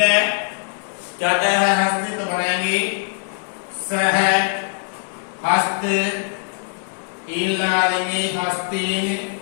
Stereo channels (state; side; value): silent; right; digital silence